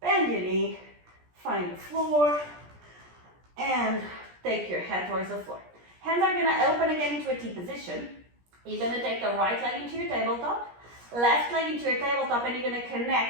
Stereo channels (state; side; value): late; left; 17 ms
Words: Bend your knee. Find the floor. And take your head towards the floor. Hands are going to open again into a T position. You're going to take the right leg into your tabletop. Left leg into your tabletop, and you're going to